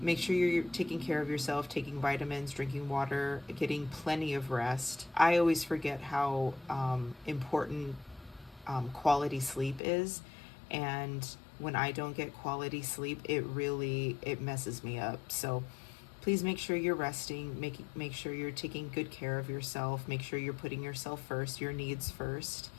sure you're taking care of yourself, taking vitamins, drinking water, getting plenty of rest. I always forget how important quality sleep is. And when I don't get quality sleep, it messes me up. So please make sure you're resting, make sure you're taking good care of yourself, make sure you're putting yourself first, your needs first,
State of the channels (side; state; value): right; drops out; at 9.8 s